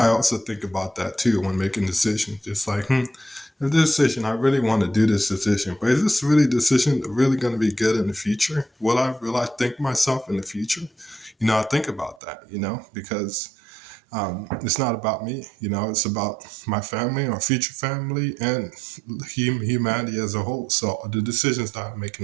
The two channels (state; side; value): drops out; left; at 12.2 s